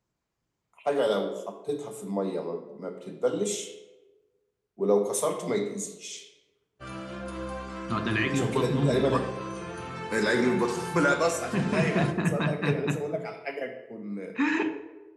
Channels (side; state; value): both; identical; correlation 1.00